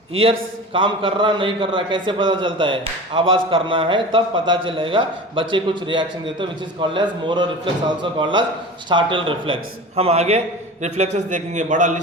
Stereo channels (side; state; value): both; normal; correlation 0.34